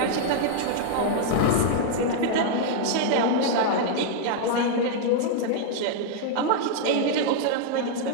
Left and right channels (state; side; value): different; both; correlation -0.01